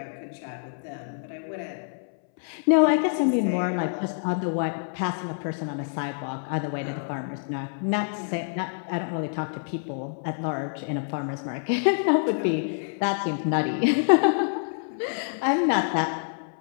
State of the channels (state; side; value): silent; right; 60 dB below the other